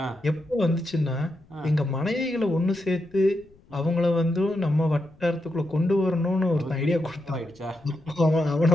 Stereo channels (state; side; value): noise; left; rumble, 28 dB below the sound